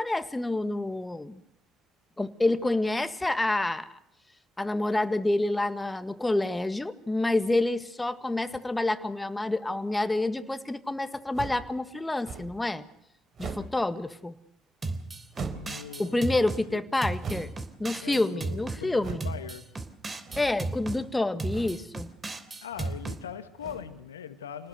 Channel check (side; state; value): both; normal; correlation 0.94